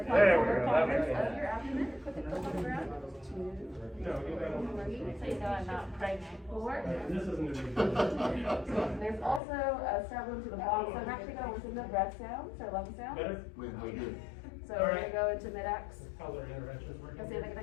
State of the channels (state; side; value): drops out; right; at 9.4 s